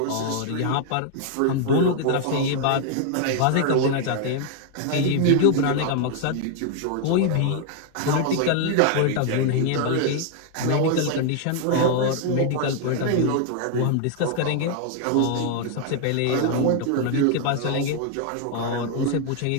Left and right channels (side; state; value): both; different; correlation 0.00